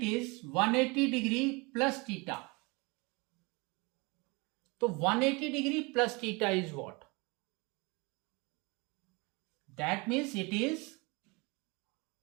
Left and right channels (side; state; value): left; quieter; 27.3 dB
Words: is 180 degree plus theta. So 180 degree plus theta is what? That means it is